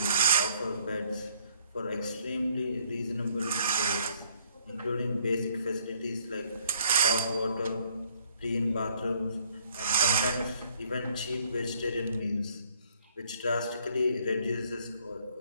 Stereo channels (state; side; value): inverted; both; correlation -0.64